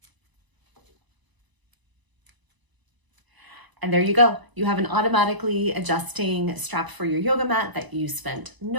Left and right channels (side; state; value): left; late; 1.0 ms